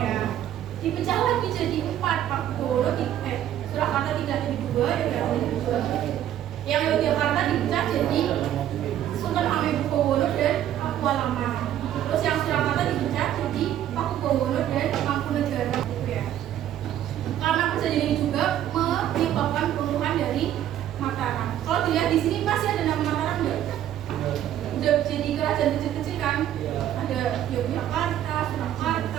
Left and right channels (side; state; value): left; quieter; 11.5 dB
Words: Dipecah lagi jadi empat, Pakubowono di Surakarta tidak jadi dua, Yogyakarta jadi dua. Yang Yogyakarta dipecah jadi Sultan Hamengkubuwono dan Pakualaman. Terus yang Surakarta dipecah jadi Pakubowono dan Mangkunegaran gitu ya. Karena perjanjian ini juga menyebabkan peruntuhan dari Mataram. Kalau dilihat di sini masih ada nama Mataram nggak? Udah jadi kerajaan kecil-kecil kan? Ada Yogyakarta,